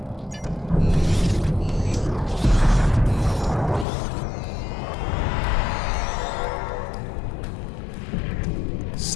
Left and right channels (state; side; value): drops out; right; at 3.9 s